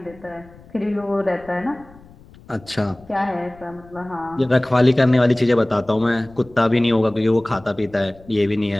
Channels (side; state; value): left; noise; rumble, 24 dB below the sound